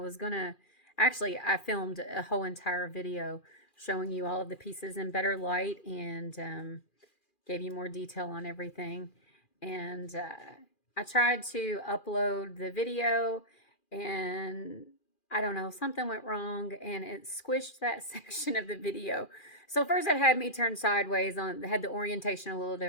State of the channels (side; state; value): right; late; 2.4 ms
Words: going to, actually, I filmed a whole entire video showing you all of the pieces in better light and gave you more detail on everything. And I tried to upload the video and I don't know, something went wrong and it squished that section of the video. So first it had me turn sideways on, had the orientation a little